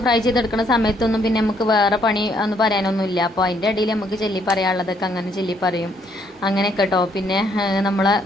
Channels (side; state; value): both; normal; correlation 0.69